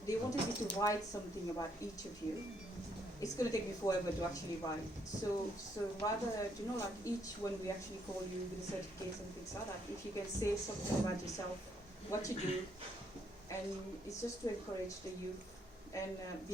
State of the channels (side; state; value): both; normal; correlation 0.72